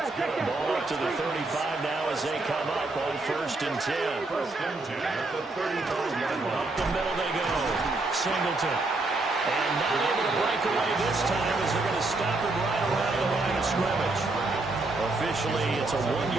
Ball up to the 35 now as they come up on 1st and 10. First and 10 at the 35-yard line. Up the middle they go. Singleton. And not able to break away this time as they're going to stop him right around the line of scrimmage. Officially, it's a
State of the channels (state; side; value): quieter; left; 3.2 dB